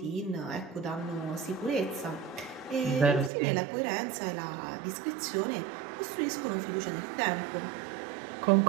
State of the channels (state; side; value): drops out; left; at 3.3 s